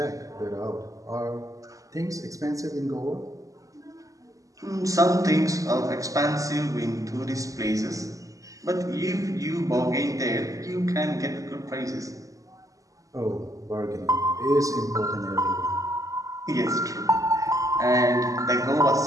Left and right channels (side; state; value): left; late; 0.16 ms